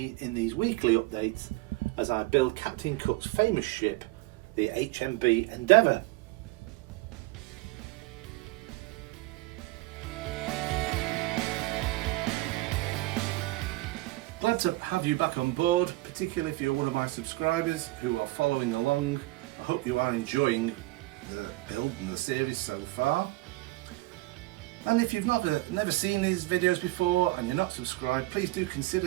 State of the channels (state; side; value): quieter; left; 20.1 dB